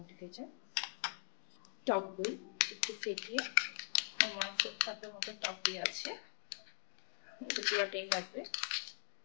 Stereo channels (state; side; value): silent; right; digital silence